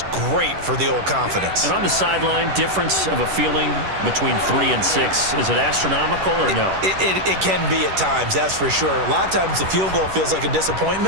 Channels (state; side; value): late; left; 10 ms